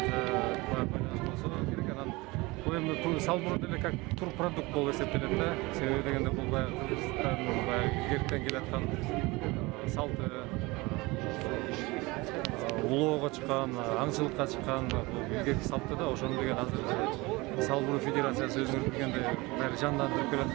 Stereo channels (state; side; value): quieter; left; 23.2 dB